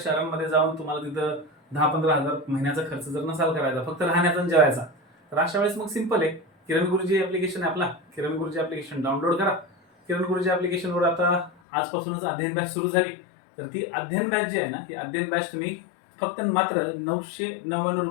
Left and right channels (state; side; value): drops out; right; at 11.5 s